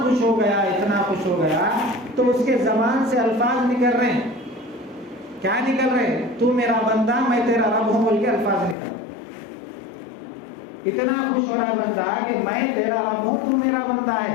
ہو گیا تو اس کے زبان سے الفاظ نکل رہے ہیں، کیا نکل رہے ہیں؟ تو میرا بندہ، میں تیرا رب ہوں، بول کے الفاظ نکل۔ اتنا خوش ہو رہا بندہ کہ میں تیرا رب ہوں، تو میرا بندہ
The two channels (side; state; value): right; drops out; at 8.8 s